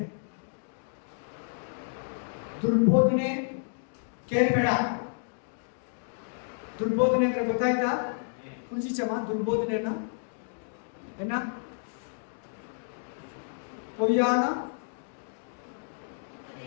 ದುರ್ಬೋಧನೆ ಕೇಳ್ಬೇಡ. ದುರ್ಬೋಧನೆ ಅಂದ್ರೆ ಗೊತ್ತಾಯ್ತಾ? ಕುಂಜಿಚಮ್ಮ ದುರ್ಬೋಧನೆಯನ್ನ ಏನ ಪೊಯ್ಯಾನ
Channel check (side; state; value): right; silent; digital silence